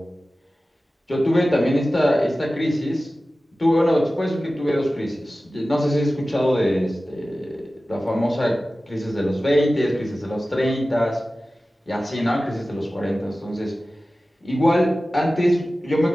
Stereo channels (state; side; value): normal; both; correlation 0.96